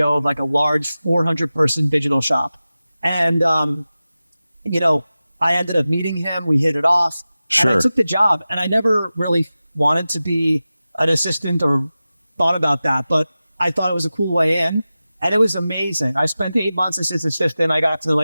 of like a large 400 person digital shop. And, you know, I ended up meeting him. We hit it off. Sure. And I took the job and I never really wanted to be an assistant or thought about that, but I thought it was a cool way in and it was amazing. I spent 8 months as his assistant. I got to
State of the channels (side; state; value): both; inverted; correlation -0.95